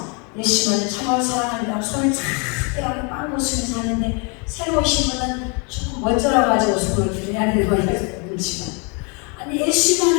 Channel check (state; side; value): quieter; right; 34.4 dB